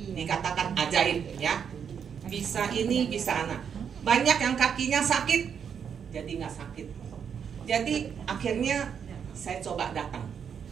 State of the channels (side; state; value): left; quieter; 7.4 dB